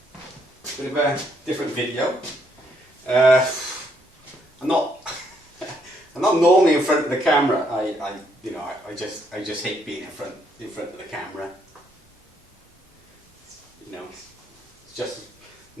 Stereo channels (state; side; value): normal; both; correlation 0.72